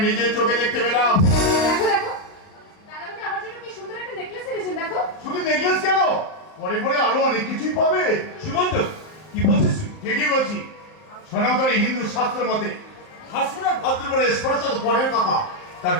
নিজের চোখে দেখতে পেলাম। দেখো দেখো দাদামণি আমার জন্য কি সুন্দর একটা নেকলেস এনেছেন দেখো। শুধু নেকলেস কেন, পরে পরে আরো অনেক কিছুই পাবে। সুমন্ত কি বলছিস তুই? ঠিকই বলছি। সনাতনী হিন্দু শাস্ত্র মতে ভাসুরের ভাদ্রবরে স্পর্শ তো পরের কথা, তার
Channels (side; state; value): right; late; 38 ms